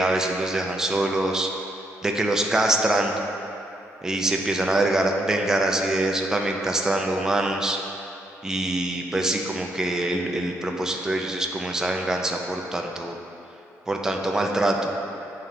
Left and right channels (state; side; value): normal; both; correlation 0.76